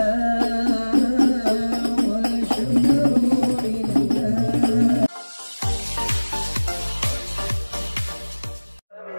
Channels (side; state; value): both; inverted; correlation -1.00